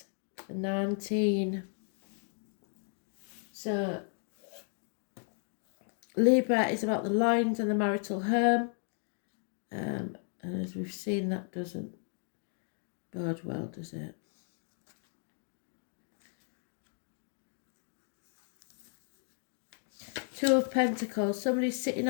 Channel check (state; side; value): silent; right; 55 dB below the other